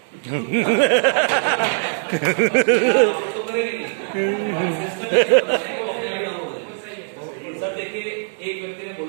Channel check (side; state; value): left; silent; digital silence